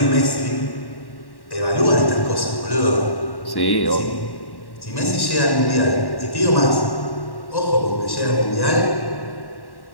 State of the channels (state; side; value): late; right; 1.1 ms